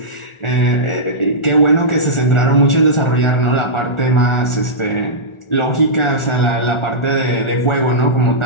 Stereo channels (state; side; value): late; right; 1.4 ms